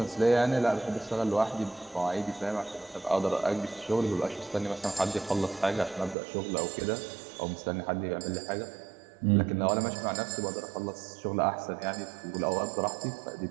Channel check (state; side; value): drops out; left; at 6.2 s